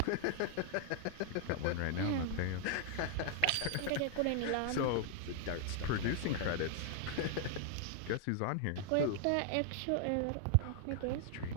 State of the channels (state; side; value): different; both; correlation 0.00